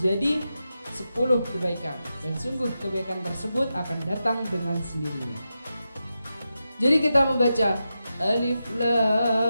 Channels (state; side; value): inverted; both; correlation -0.89